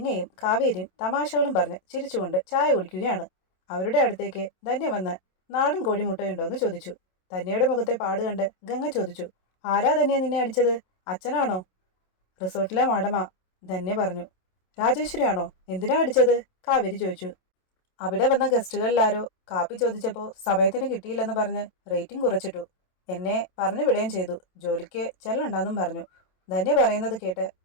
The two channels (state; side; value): late; right; 27 ms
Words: കാവേരിയും തമാശകളും പറഞ്ഞ് ചിരിച്ചുകൊണ്ട് ചായ കുടിക്കുകയാണ്. അവരുടെ അടുത്തേക്ക് ധന്യ വന്ന് നാടൻ കോഴിമുട്ടയുണ്ടോ എന്ന് ചോദിച്ചു. ധന്യയുടെ മുഖത്തെ പാട് കണ്ട് ഗംഗ ചോദിച്ചു. ആരാ ധന്യ നിന്നെ അടിച്ചത്? അച്ഛനാണോ? റിസോർട്ടിലെ മാഡമാ, ധന്യ പറഞ്ഞു. രാജേശ്വരി ആണോ? എന്തിനാ അടിച്ചത്? കാവേരി ചോദിച്ചു. അവിടെ വന്ന ഗസ്റ്റുകളിലാരോ കാപ്പി ചോദിച്ചപ്പോൾ സമയത്തിന് കിട്ടിയില്ലെന്ന് പറഞ്ഞ് റേറ്റിംഗ് കുറച്ചിട്ടു. എന്നെ പറഞ്ഞു വിടുകയും ചെയ്തു. ജോലിക്ക് ചെല്ലണ്ടെന്നും പറഞ്ഞു. ധന്യ പറയുന്നത് കേട്ട്